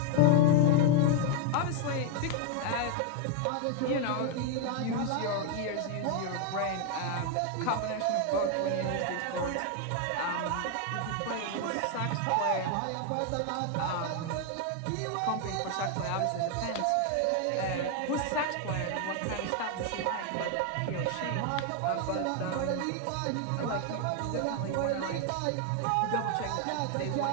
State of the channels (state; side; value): different; both; correlation 0.00